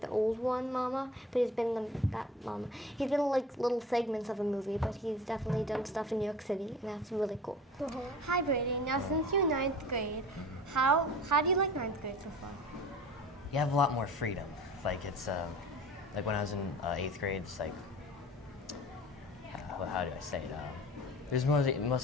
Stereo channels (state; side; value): normal; both; correlation 0.41